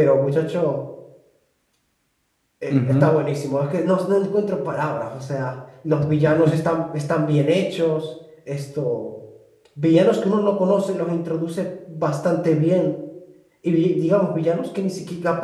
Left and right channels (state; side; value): identical; both; correlation 1.00